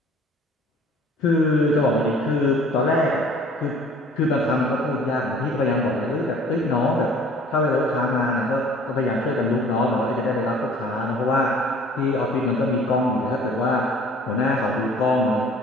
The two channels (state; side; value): normal; both; correlation 0.51